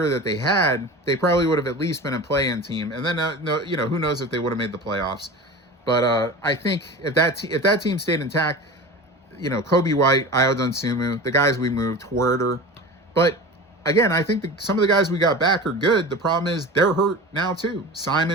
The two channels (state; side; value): normal; both; correlation 0.33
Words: that they had, they probably would have at least been a play-in team. And then, no, who knows if they would have made the playoffs. But I think if that team stayed intact, Kobe White, Ayo Dosunmu, the guys we moved, Huerter. But again, I think some of the guys we got back are good. The problem is they're hurt now too.